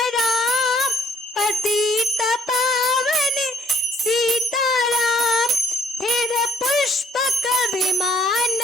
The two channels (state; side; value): normal; both; correlation 0.59